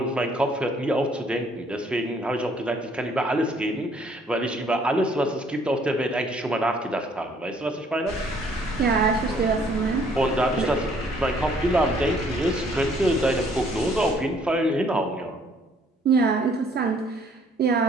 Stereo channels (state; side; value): normal; both; correlation 0.62